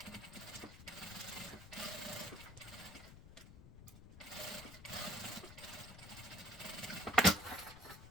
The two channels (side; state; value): left; noise; rumble, 15 dB below the sound